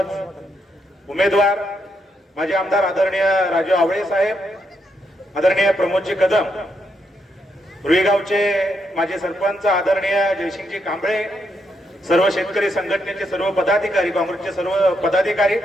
उमेदवार, माझे आमदार आदरणीय राजू आवळे साहेब, आदरणीय प्रमोदजी कदम, रुईगावचे माझे सरपंच आदरणीय जयसिंगजी कांबळे, सर्व शेतकरी संघटनेचे सर्व पदाधिकारी, काँग्रेसचे सर्व पदाधिकारी,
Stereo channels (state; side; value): normal; both; correlation 0.79